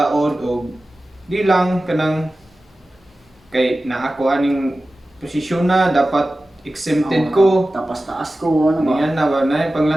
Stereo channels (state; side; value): normal; both; correlation 0.95